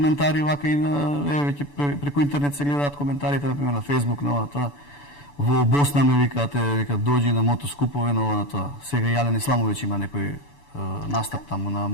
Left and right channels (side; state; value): right; late; 7.0 ms